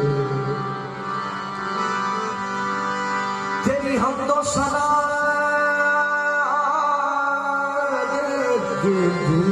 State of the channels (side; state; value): both; identical; correlation 1.00